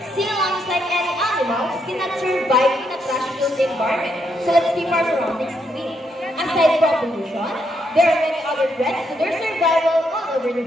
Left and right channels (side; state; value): both; normal; correlation 0.77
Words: Sea lions, like any animals, cannot survive in a trash-filled environment. So let's keep our surroundings clean. Aside from pollution, there are many other threats to their survival all over the